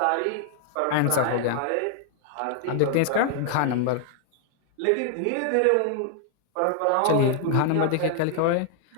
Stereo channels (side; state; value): both; different; correlation 0.00